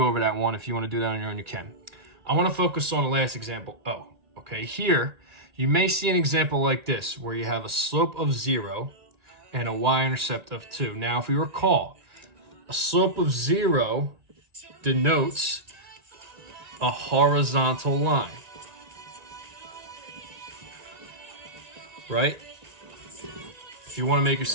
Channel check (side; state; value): left; late; 1.9 ms